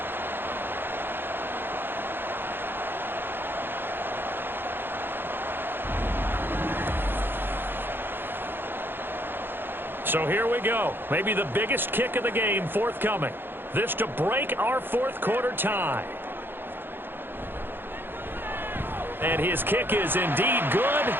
So here we go. Maybe the biggest kick of the game forthcoming. This to break our fourth quarter tie. And his kick is indeed good,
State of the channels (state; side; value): late; left; 0.10 ms